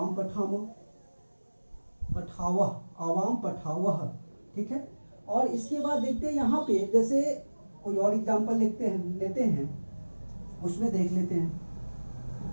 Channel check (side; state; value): both; inverted; correlation -1.00